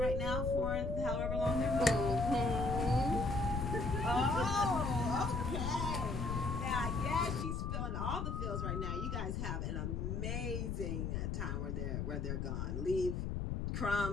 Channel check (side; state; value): left; noise; rumble, 2 dB below the sound